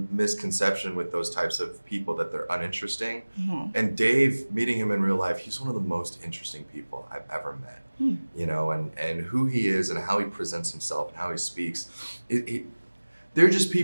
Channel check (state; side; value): inverted; both; correlation -1.00